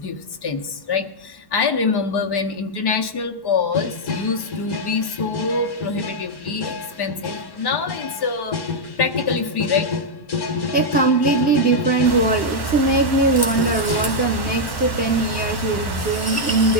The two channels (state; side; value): late; right; 1.1 ms